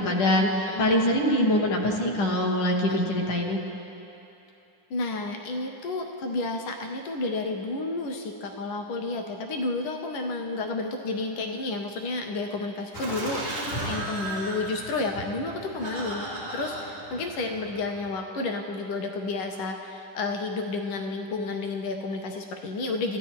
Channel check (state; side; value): late; right; 10 ms